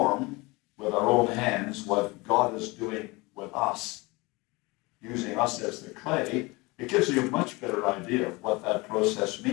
with our own hands what God is doing with us, using us as the clay, it gives you a much better idea of what that process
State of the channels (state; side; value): quieter; right; 24.2 dB